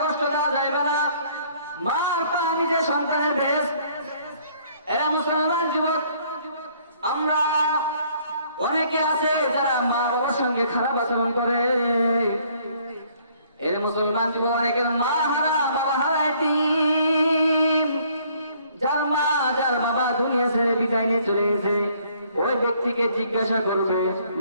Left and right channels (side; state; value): both; inverted; correlation -0.62